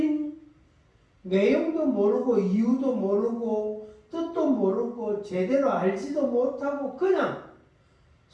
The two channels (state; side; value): identical; both; correlation 1.00